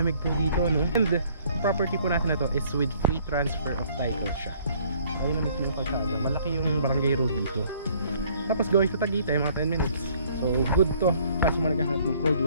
po dito, no? And property po natin na to is with free transfer of title siya. Ayun na mismo yung kalsada. Malaki yung barangay road dito. Tapos going to Tagaytay mga 10 minutes. So good to kasi mo naghahanap ng cold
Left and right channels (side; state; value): both; inverted; correlation -0.60